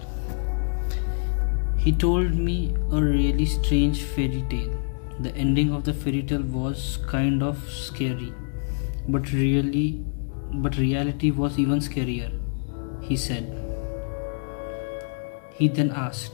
He told me a really strange fairy tale. The ending of the fairy tale was kind of scary, but reality was even scarier, he said. He then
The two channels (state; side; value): silent; right; digital silence